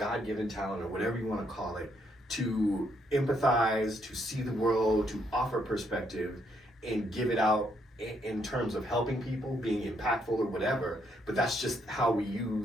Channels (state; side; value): normal; both; correlation 0.73